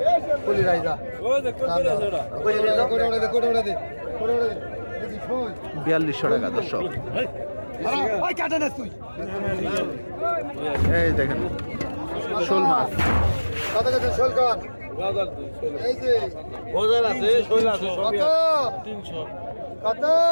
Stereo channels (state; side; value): inverted; both; correlation -1.00